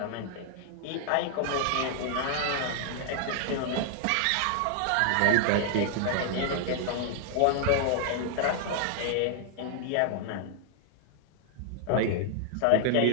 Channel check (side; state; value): both; different; correlation 0.00